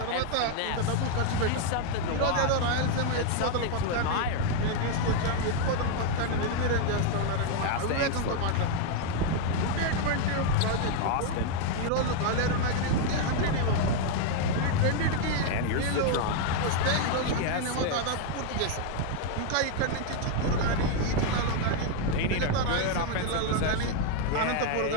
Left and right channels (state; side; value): different; both; correlation 0.00